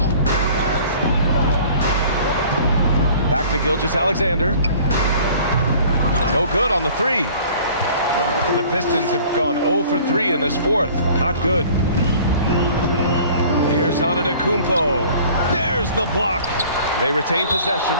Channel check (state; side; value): inverted; both; correlation -0.49